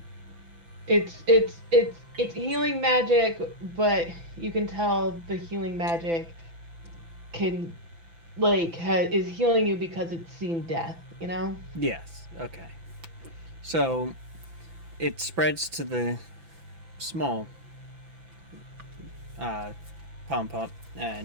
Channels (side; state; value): left; late; 6.0 ms